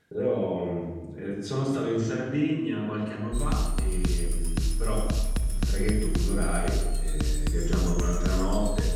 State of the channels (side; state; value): both; identical; correlation 1.00